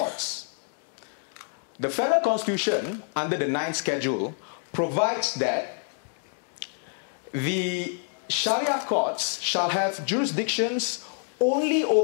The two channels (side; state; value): right; silent; 60 dB below the other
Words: The Federal Constitution, under the 9th Schedule, provides that the Sharia courts shall have jurisdictions only